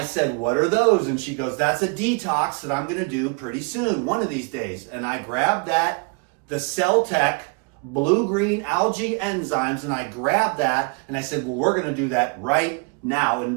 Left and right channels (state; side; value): quieter; left; 32.9 dB